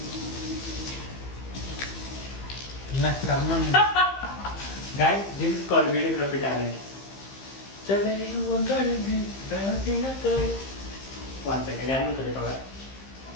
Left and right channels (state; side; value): late; right; 15 ms